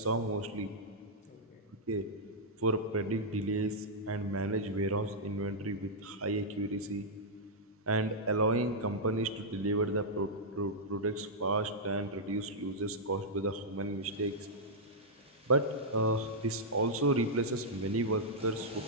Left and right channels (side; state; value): both; normal; correlation -0.08